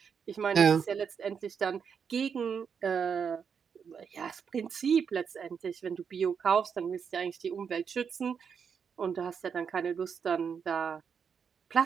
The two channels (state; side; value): quieter; left; 6.7 dB